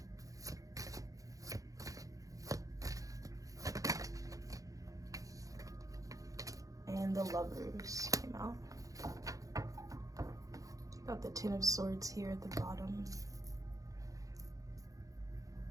And the Lovers came out. Got the Ten of Swords here at the bottom.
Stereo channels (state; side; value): late; left; 0.17 ms